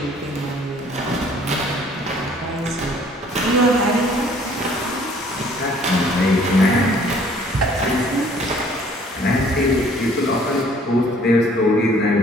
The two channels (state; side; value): normal; both; correlation 0.57